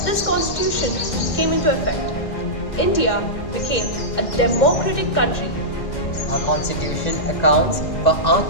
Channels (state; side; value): late; right; 2.1 ms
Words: this constitution came into effect. India became a democratic country. Our constitution accounts for our